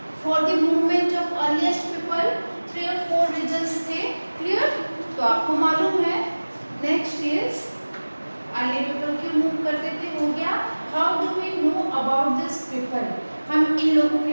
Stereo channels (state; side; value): inverted; both; correlation -1.00